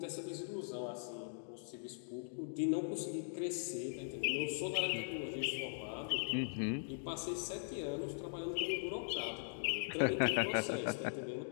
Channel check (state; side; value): silent; right; digital silence